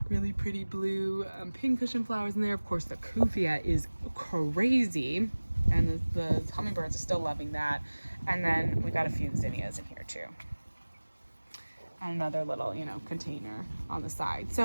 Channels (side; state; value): both; inverted; correlation -1.00